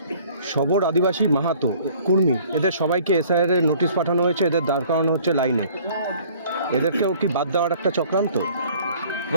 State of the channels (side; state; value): both; inverted; correlation -0.54